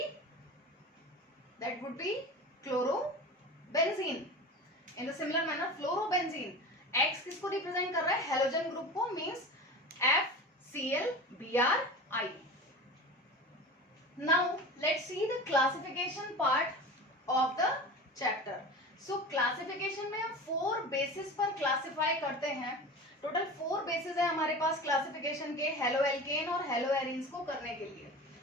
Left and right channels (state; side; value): normal; both; correlation 0.33